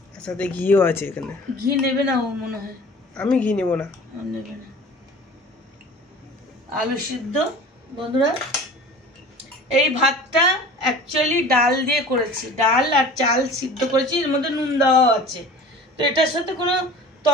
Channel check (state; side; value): normal; both; correlation 0.42